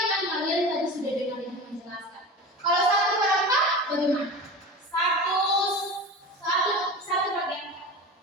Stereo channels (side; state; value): both; normal; correlation 0.31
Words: kan kalian tadi sudah dengar ibu menjelaskan. Kalau 1/4 bagaimana? Satu bagian.